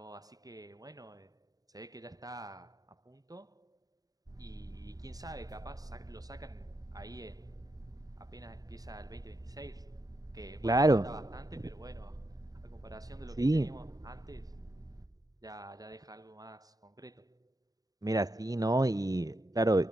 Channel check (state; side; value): late; left; 0.18 ms